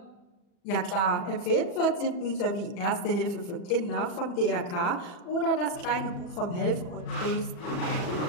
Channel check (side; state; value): right; late; 40 ms